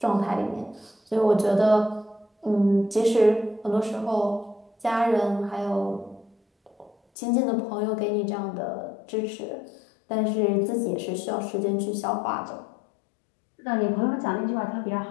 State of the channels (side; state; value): right; drops out; at 7.0 s